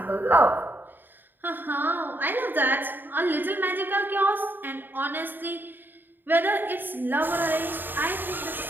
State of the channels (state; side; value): late; left; 0.093 ms